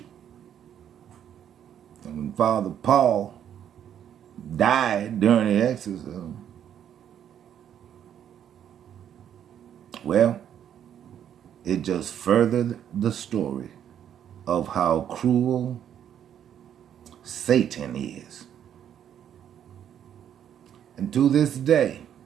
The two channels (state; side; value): quieter; left; 9.6 dB